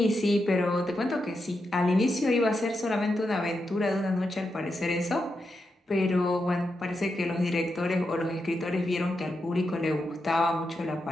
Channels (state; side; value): normal; both; correlation 0.86